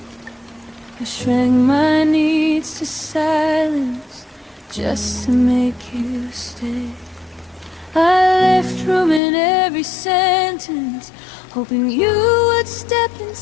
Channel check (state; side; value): drops out; right; at 9.2 s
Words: I shrank my needs to silence just to make you stay. I left room in every sentence, hoping you would step